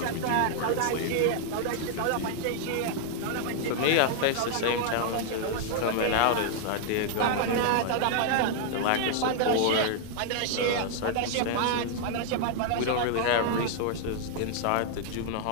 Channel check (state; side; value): different; both; correlation 0.00